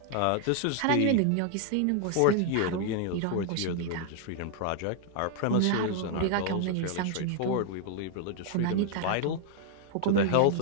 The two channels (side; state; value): both; different; correlation 0.00